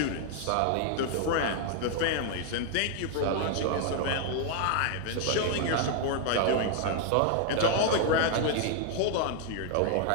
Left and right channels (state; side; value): different; both; correlation 0.00